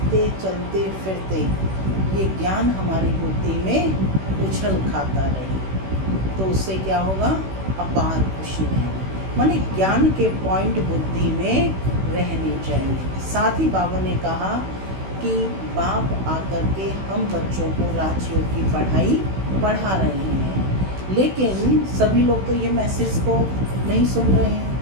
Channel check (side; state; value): left; late; 16 ms